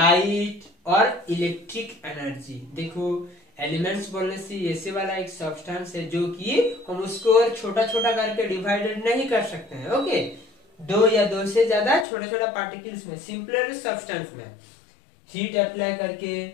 और इलेक्ट्रिक एनर्जी। देखो एलिमेंट्स बोलने से ऐसे वाला एक सब्सटेंस है जो कि हम उसको छोटा छोटा करके डिवाइडेड नहीं कर सकते हैं। ओके, दो या दो से ज्यादा छोटा छोटा पार्टिकल्स में, सिंपलर सब्सटेंस में हीट अप्लाई करके,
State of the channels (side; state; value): right; drops out; at 12.1 s